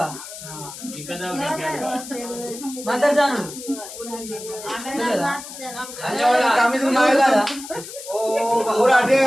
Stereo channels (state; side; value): noise; left; hiss, 12 dB below the sound